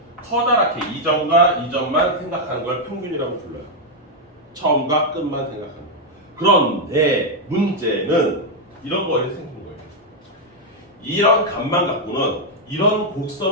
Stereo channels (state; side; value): normal; both; correlation 0.00